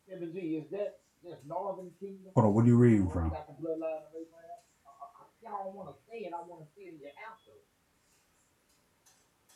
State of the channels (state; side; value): identical; both; correlation 1.00